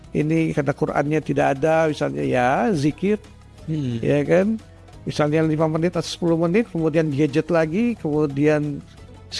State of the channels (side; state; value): both; identical; correlation 1.00